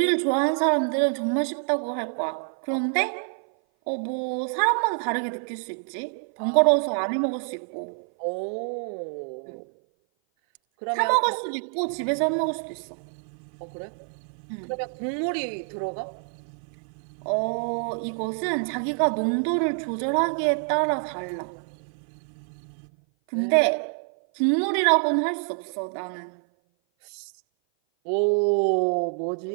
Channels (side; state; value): left; silent; 56 dB below the other